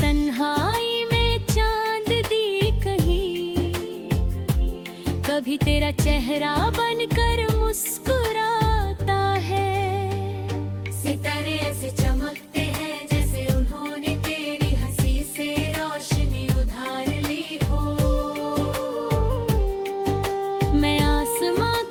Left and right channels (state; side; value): identical; both; correlation 1.00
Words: तन्हाई में चांद दी कहीं, कभी तेरा चेहरा बनकर मुस्कुराता है। सितारे ऐसे चमकते हैं जैसे उन्होंने तेरी हंसी से रोशनी उधार ली हो। मैं आसमां